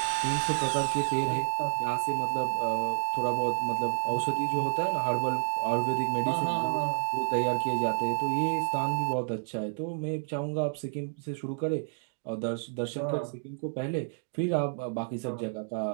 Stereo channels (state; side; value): silent; left; digital silence